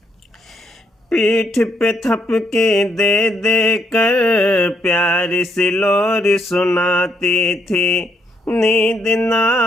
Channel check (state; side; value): normal; both; correlation 0.74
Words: पीठ पे थपके दे दे कर प्यारी सी लोरी सुनाती थी। नींद न